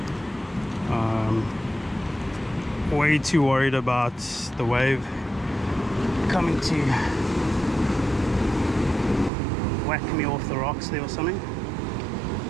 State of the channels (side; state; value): left; drops out; at 9.3 s